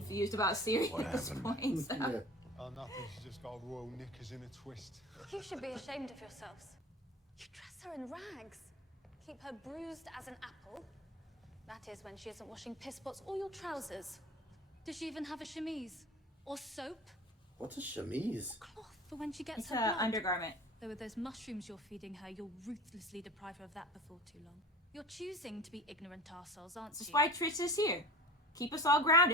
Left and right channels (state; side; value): normal; both; correlation 0.37